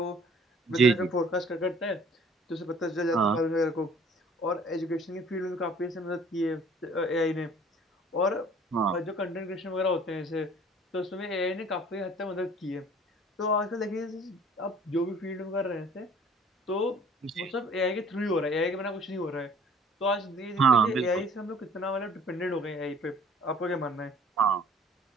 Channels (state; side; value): normal; both; correlation 0.53